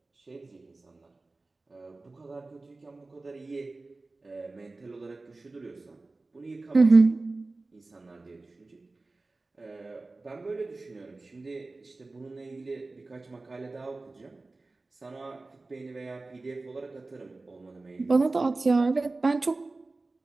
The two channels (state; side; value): quieter; left; 3.4 dB